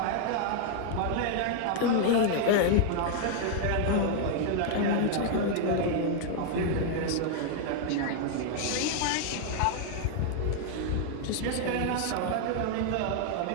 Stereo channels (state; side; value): different; both; correlation 0.00